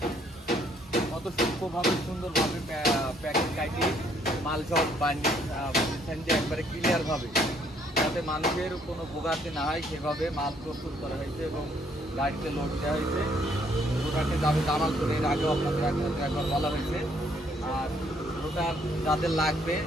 কত সূক্ষ্মভাবে সুন্দরভাবে প্যাকেট কাটি মাল সব বানিয়েছেন যে একবারে ক্লিয়ারভাবে, যাতে মানুষের কোনো ভোগান্তি না হয় সেভাবে মাল প্রস্তুত করা হয়েছে এবং গাড়িতে লোড দেওয়া হয়েছে। রোটারটি যাবে জামালপুরে, এর আগেও আপনাদের একবার বলা হয়েছে। আর রোটার যাদের লাগবে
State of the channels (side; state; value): both; normal; correlation 0.66